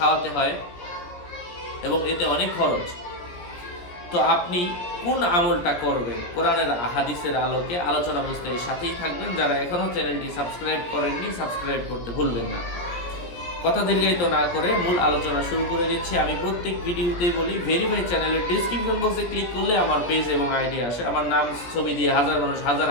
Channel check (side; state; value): right; late; 17 ms